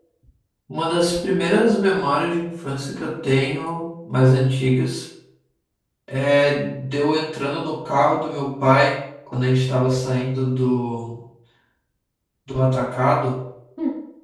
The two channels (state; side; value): identical; both; correlation 1.00